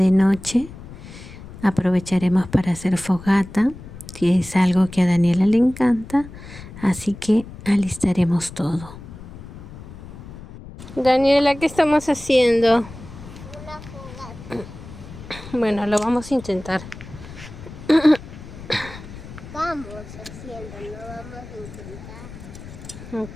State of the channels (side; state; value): left; noise; rumble, 15 dB below the sound